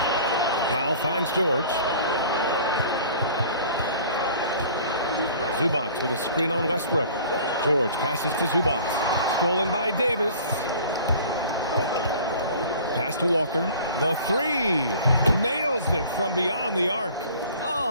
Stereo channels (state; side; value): inverted; both; correlation -0.47